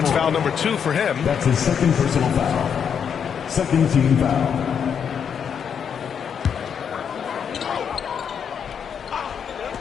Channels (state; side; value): quieter; right; 7.5 dB